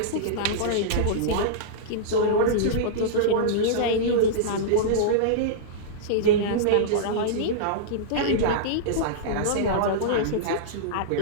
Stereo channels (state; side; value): different; both; correlation -0.03